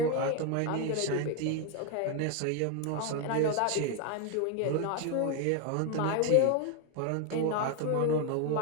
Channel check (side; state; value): both; different; correlation 0.01